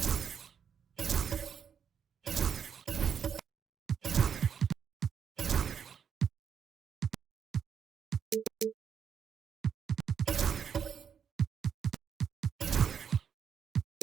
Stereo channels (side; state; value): left; quieter; 7.5 dB